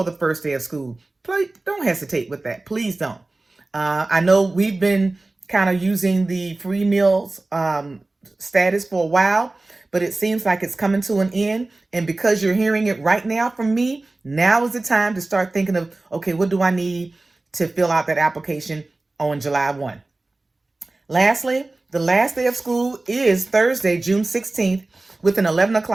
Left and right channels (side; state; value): left; quieter; 3.1 dB